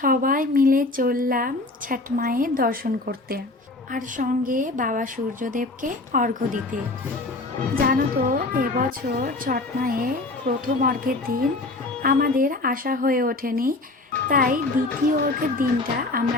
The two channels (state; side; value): quieter; right; 3.1 dB